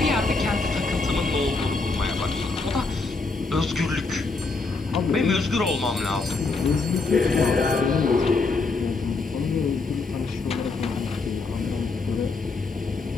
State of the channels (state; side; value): quieter; right; 3.9 dB